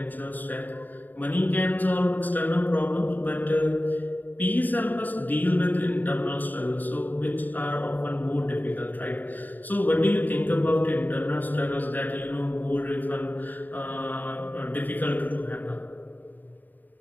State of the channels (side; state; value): right; late; 0.086 ms